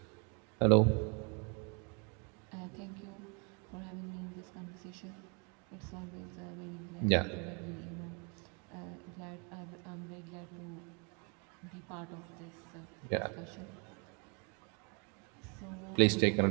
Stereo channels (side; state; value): left; quieter; 34.6 dB